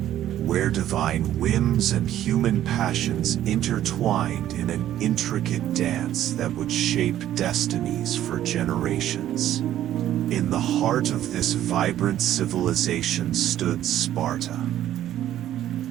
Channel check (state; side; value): quieter; left; 12.2 dB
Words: where divine whims and human passions intertwined in an intricate dance that would shape destinies for generations. In the heart of this vibrant civilization stood Sparta,